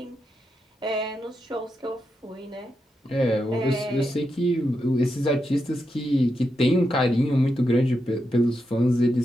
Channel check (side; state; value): both; normal; correlation 0.85